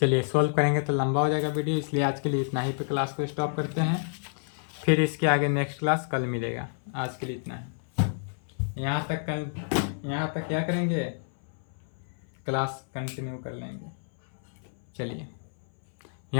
चलिए सॉल्व करेंगे तो लंबा हो जाएगा वीडियो, इसलिए आज के लिए इतना ही पे क्लास को स्टॉप करते हैं। फिर इसके आगे नेक्स्ट क्लास कल मिलेगा। आज के लिए इतना ही, यहाँ तक क्या करेंगे, क्लास कंटिन्यू कर लेंगे। चलिए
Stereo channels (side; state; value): right; silent; 59 dB below the other